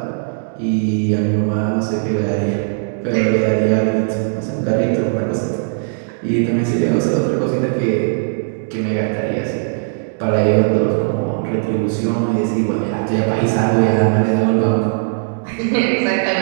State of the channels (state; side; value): silent; left; digital silence